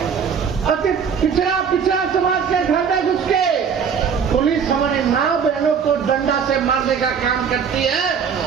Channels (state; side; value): quieter; left; 6.9 dB